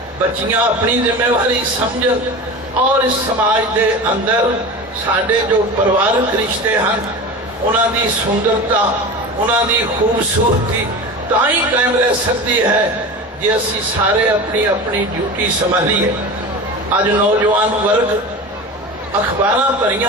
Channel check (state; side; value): normal; both; correlation 0.30